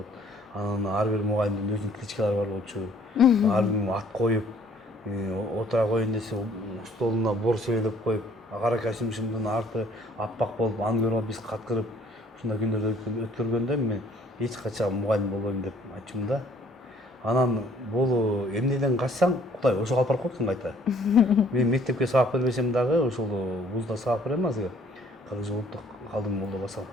Анан ар бир мугалимдин өзүнүн кличкалары бар болчу. Ар ким ат коюп, отура коеюн десе столуна бор себелеп коюп, кара костюмшумдун арты аппак болуп, аны көрүп биз каткырып, ушундай күндөрдү өткөргөндө мен эч качан мугалим болбойм деп айтчумун да. Анан бул эмнеден качсаң, Кудай ошого алып барып коет экен кайта. Мен мектепке сабак бербесем дагы, ошол вузда сабак берем азыр. Кыргыз улуттук Калдым Молдо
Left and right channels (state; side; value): normal; both; correlation 0.59